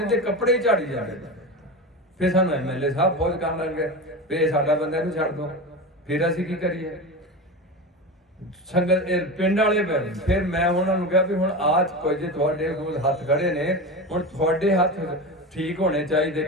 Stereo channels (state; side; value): normal; both; correlation 0.24